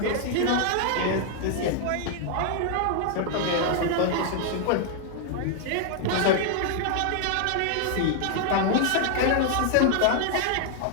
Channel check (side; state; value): both; different; correlation 0.00